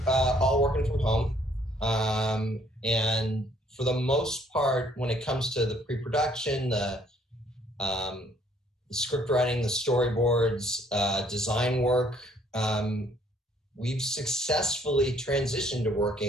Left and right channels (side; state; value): both; normal; correlation 0.63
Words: all working from home. And for the most part, when it comes to the pre-production, the script writing, the storyboards, design work, we've successfully transitioned to